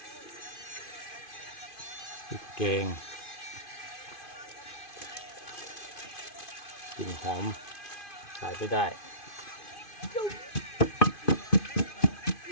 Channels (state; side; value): late; right; 2.5 ms